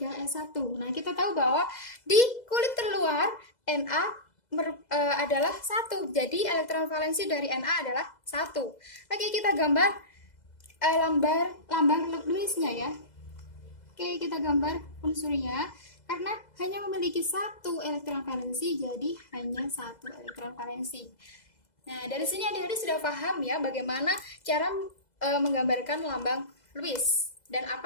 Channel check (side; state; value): right; late; 2.0 ms